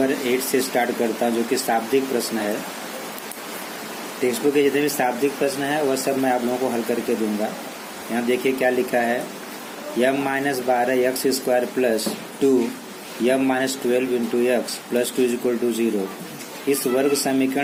8 से स्टार्ट करता हूँ, जो कि शाब्दिक प्रश्न है। टेक्स्ट बुक के जितने भी शाब्दिक प्रश्न है वह सब मैं आप लोगों को हल करके दूंगा। यहाँ देखिए क्या लिखा है, m-12x² plus 2 m-12 into X plus 2 equal to 0। इस वर्ग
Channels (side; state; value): both; identical; correlation 1.00